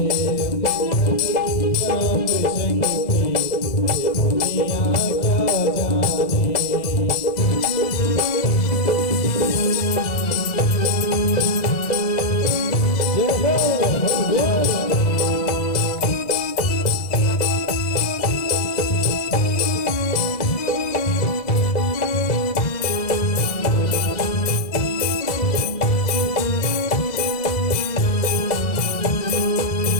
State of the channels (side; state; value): right; late; 1.9 ms